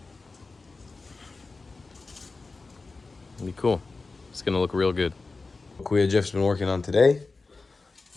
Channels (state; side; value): quieter; right; 3.9 dB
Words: It'll be cool. It's gonna look real good. Kuya Jeff's been working on today.